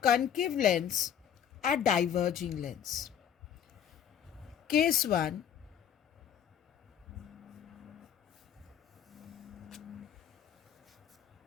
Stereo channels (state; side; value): quieter; right; 9.0 dB